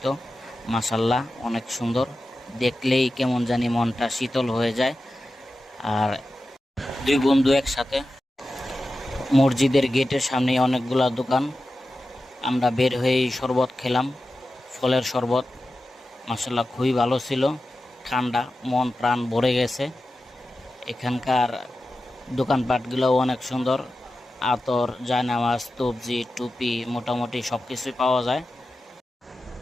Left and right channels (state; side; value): normal; both; correlation 0.93